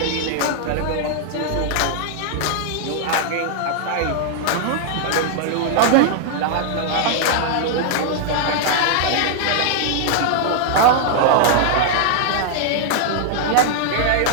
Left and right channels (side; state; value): both; different; correlation -0.01